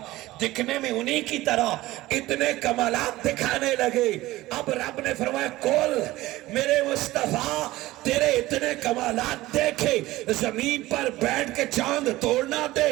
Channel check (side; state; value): left; quieter; 17.6 dB